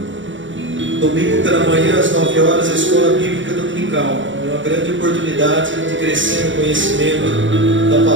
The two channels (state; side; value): late; left; 0.55 ms